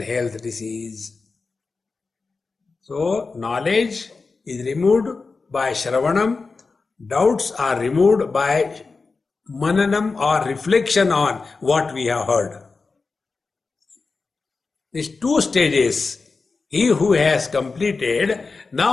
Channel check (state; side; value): quieter; right; 4.2 dB